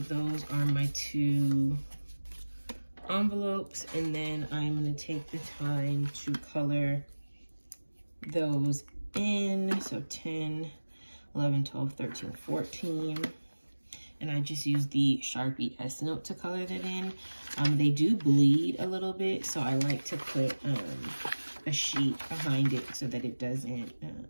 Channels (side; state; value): both; inverted; correlation -1.00